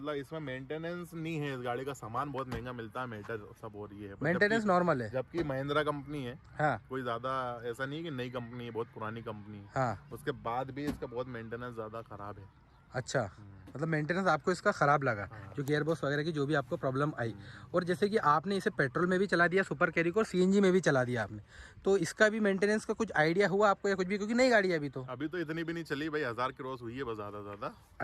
इसमें मेंटेनेंस नहीं है। इस गाड़ी का सामान बहुत महंगा मिलता है, मीटर सब हो रही है, मेंटेनेंस नॉर्मल है। जबकि महिंद्रा कंपनी है। हाँ। कोई ज्यादा ऐसा नहीं है कि नई कंपनी है, बहुत पुरानी कंपनी है। हाँ। उसके बाद भी इसका बहुत मेंटेनेंस ज्यादा खराब है। अच्छा, मतलब मेंटेनेंस आपको इसका ख़राब लगा, जो गियर बॉक्स वगैरह की जो भी आपको प्रॉब्लम आई। और जैसे कि आपने इसे पेट्रोल में भी चला दिया सुपर कैरी को, और सीएनजी में भी चला दिया आपने, तो इसका भी मेंटेनेंस का कुछ आइडिया हुआ आपको या कुछ भी, क्योंकि नई गाड़ी है अभी तो इतनी भी नहीं चली भाई, 1000 क्रॉस हुई है बस, ज़्यादा।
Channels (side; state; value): both; identical; correlation 1.00